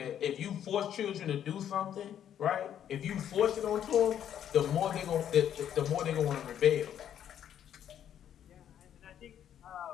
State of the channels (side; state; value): right; quieter; 9.9 dB